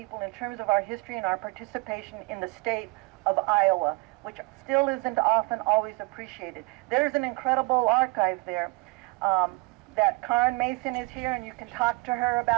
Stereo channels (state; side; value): quieter; left; 27.2 dB